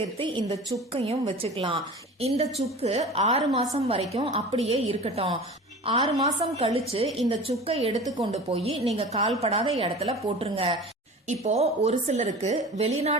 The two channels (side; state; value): both; normal; correlation 0.37